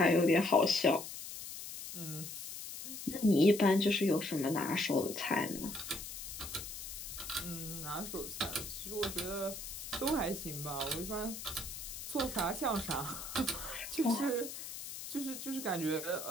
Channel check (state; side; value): noise; left; hiss, 9 dB below the sound